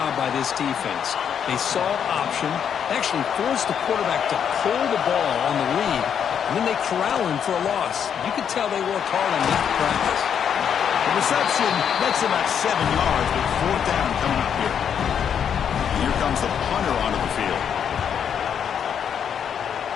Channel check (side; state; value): right; quieter; 8.1 dB